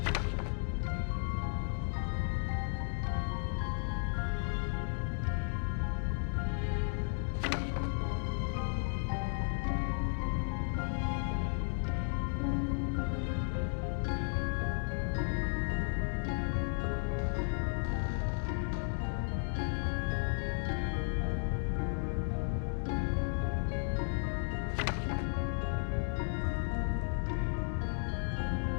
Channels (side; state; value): right; silent; 55 dB below the other